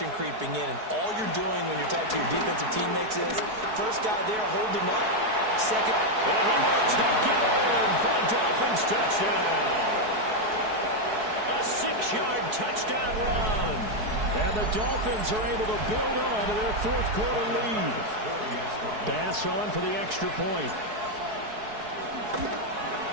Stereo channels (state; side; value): late; left; 4.7 ms